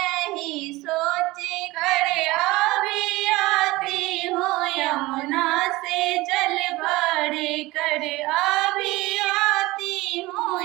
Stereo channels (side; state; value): left; quieter; 20.1 dB